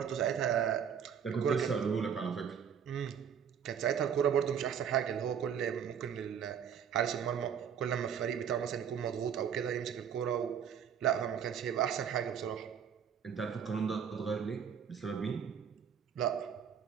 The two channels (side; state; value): left; quieter; 8.0 dB